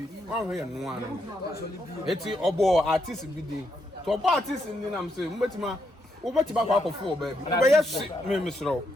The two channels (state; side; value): normal; both; correlation 0.79